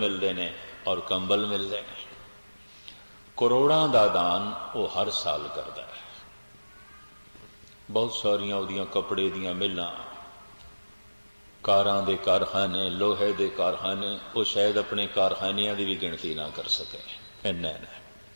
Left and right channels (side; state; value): both; inverted; correlation -1.00